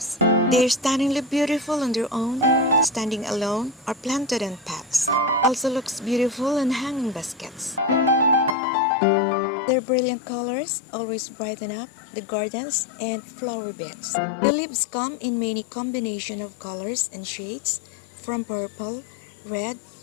They're stunningly beautiful on their own, standing alone, or planted in pots. Also looks beautiful in hanging baskets. Their brilliant colors always brighten up the gardens and flower beds. The leaves come in many combinations of colors and shades, from purple, red,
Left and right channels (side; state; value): right; drops out; at 8.6 s